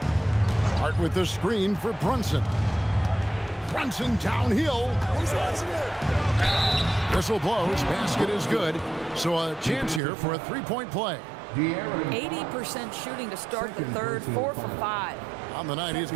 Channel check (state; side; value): drops out; left; at 10.0 s